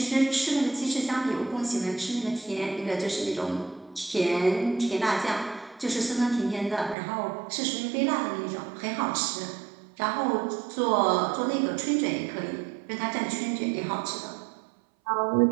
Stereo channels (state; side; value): drops out; left; at 7.0 s